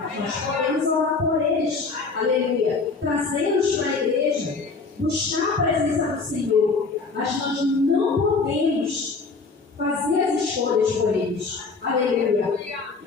nós podemos orar por eles, aleluia, trazê-los para a igreja, buscar a presença do Senhor, mas nós não podemos fazer as escolhas por eles, aleluia.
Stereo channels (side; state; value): right; quieter; 4.3 dB